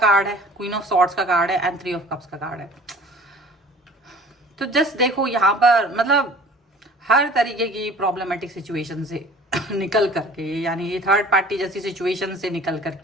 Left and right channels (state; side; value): normal; both; correlation 0.47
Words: है, क्वीन ऑफ सॉर्ड्स का कार्ड है एंड 3 ऑफ कप्स का कार्ड है। तो जस्ट देखो यहाँ पर मतलब हर तरीके की प्रॉब्लमेटिक सिचुएशन से निकल करके, यानी ये थर्ड पार्टी जैसी सिचुएशन से निकल